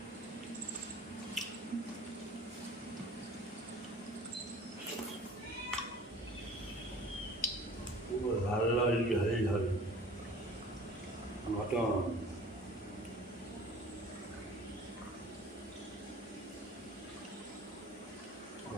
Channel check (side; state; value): both; normal; correlation 0.45